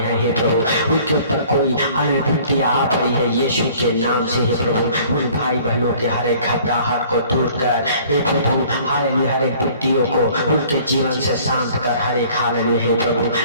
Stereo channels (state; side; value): inverted; both; correlation -0.53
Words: हैं हे प्रभु, उनके ऊपर कोई विपत्तियां आ पड़ी है यीशु के नाम से हे प्रभु, उन भाई बहनों के हर एक घबराहट को दूर कर हे प्रभु, हालेलुया हर एक विपत्तियों को उनके जीवन से शांत कर, हर एक हालेलुया हे प्रभु,